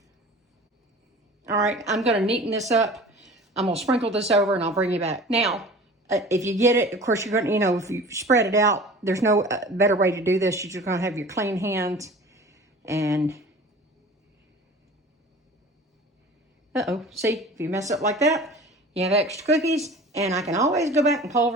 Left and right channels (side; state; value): both; normal; correlation 0.41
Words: All right, I'm going to neaten this up. I'm going to sprinkle this over, and I'll bring you back. Now, if you get it, of course, you're going to, if you spread it out, there's no better way to do this. You're just going to have your clean hands. And, see, if you mess up like that, you have extra cookies, and I can always go back and